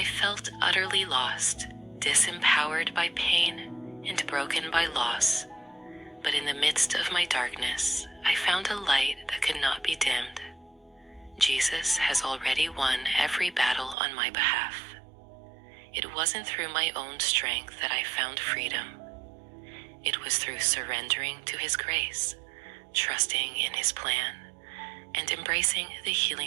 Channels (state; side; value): drops out; left; at 14.0 s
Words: felt utterly lost, disempowered by pain and broken by loss. But in the midst of my darkness, I found a light that could not be dimmed. Jesus has already won every battle on my behalf. It wasn't through my own strength that I found freedom. It was through surrendering to his grace, trusting in his plan, and embracing the